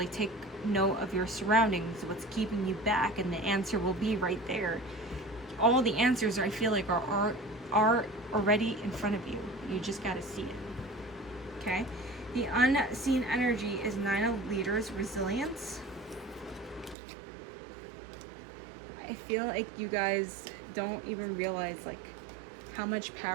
take note of your surroundings, what's keeping you back, and the answer will be right there. All the answers, I feel like, are already in front of you. You just got to see it. Okay? The unseen energy is 9 of Leaders, resilience. I feel like you guys don't even realize like how much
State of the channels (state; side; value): drops out; left; at 16.9 s